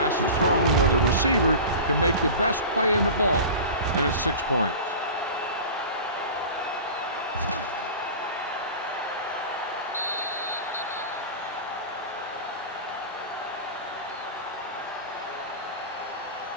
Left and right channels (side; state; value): both; inverted; correlation -0.33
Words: is thrown where the receiver can make the best play in the ball, and it's 6 points.